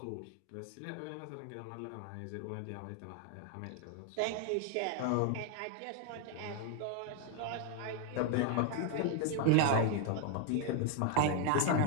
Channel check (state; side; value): different; both; correlation 0.00